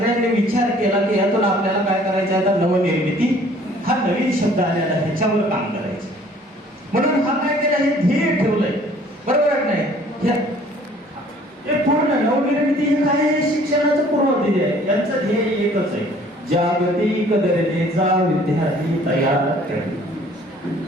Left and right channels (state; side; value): normal; both; correlation 0.55